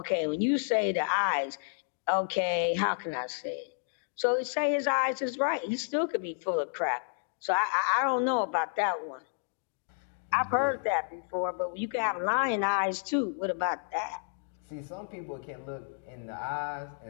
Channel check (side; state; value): right; silent; digital silence